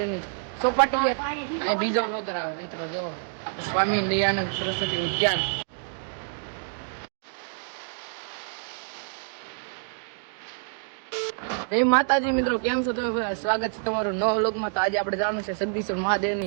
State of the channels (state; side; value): silent; left; digital silence